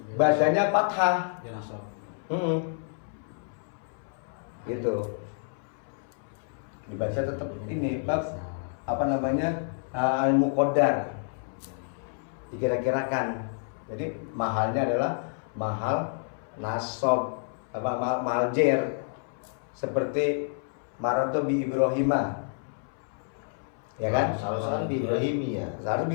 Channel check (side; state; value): right; silent; 59 dB below the other